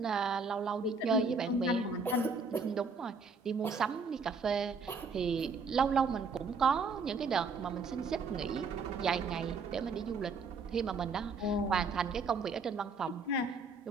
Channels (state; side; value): quieter; left; 4.3 dB